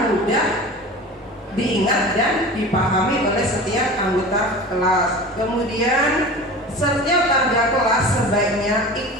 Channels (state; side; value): normal; both; correlation 0.35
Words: mudah diingat dan dipahami oleh setiap anggota kelas. Kemudian setiap warga kelas sebaiknya